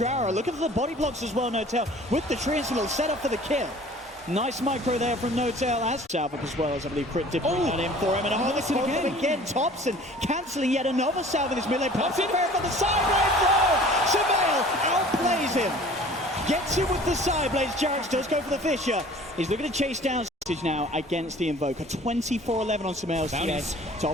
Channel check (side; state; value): both; normal; correlation 0.48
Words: Look at the body blocks as well, No-Tail, with the Triangle set up for the kill. Nice micro there from No-Tail as Salvik as well, as I believe Crit did bring that in for him. And a this again. Thompson cancelling yet another salve in this melee. Pops it fair for the side throw. Surveil outplays him. Gets him with the side blades. Jarrett does go for the fissure. He's looking to chase down now against the Invoker. 24-11 on Surveil's TA.